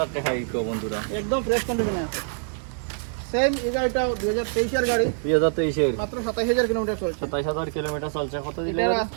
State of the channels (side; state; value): left; silent; 58 dB below the other